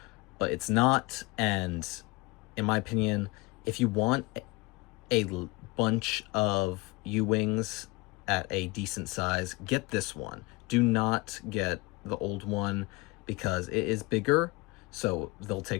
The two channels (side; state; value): right; quieter; 24.5 dB